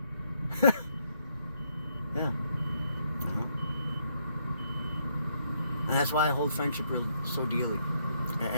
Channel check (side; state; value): both; inverted; correlation -0.74